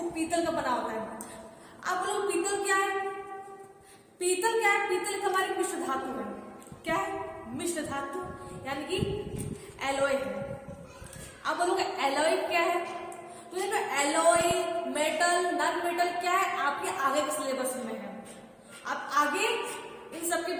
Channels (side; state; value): both; identical; correlation 1.00